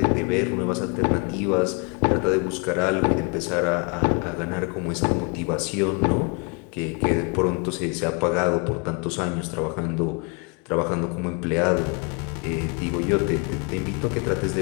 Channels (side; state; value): right; quieter; 32.8 dB